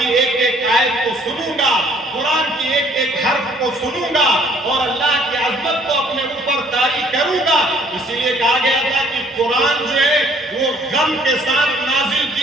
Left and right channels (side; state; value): both; normal; correlation 0.60